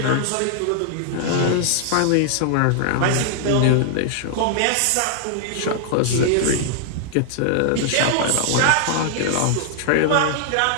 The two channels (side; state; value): both; different; correlation -0.01